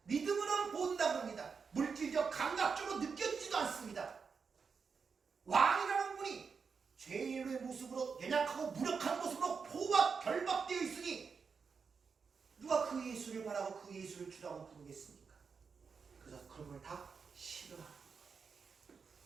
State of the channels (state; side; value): quieter; left; 5.6 dB